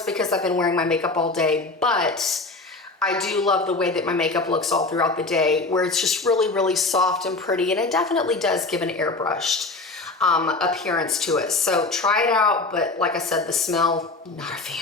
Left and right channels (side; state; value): right; quieter; 3.4 dB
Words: because I've been wearing my makeup all day, but I do love the way that my makeup looks all throughout the day, where it's just really, really soft and pretty. And it definitely does give an airbrushed appearance to it. So try it out. But like I said, the smell, not a